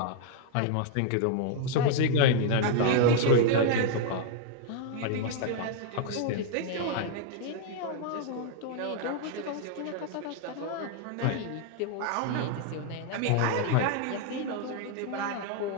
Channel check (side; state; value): both; different; correlation 0.00